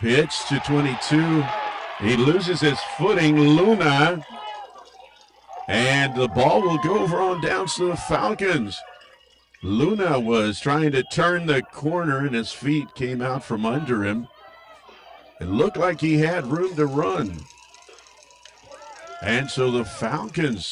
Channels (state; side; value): identical; both; correlation 1.00